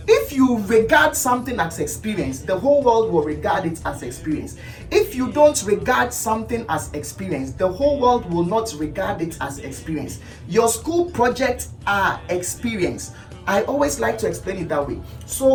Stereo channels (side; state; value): both; identical; correlation 1.00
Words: If you regard something as experience, the whole world will regard it as experience. If you don't regard something as experience, the whole world will not regard it as experience. Your school projects are experience. I always like to explain it that way.